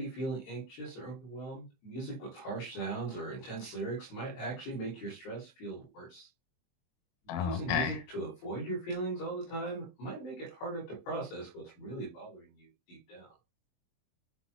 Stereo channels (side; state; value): right; late; 23 ms